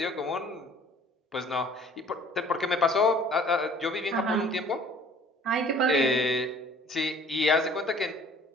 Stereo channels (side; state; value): both; normal; correlation 0.53